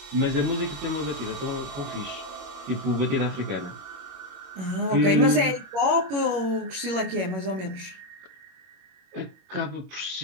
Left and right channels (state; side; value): late; left; 22 ms